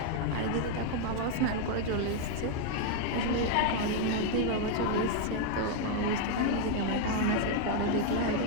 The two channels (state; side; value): different; both; correlation 0.00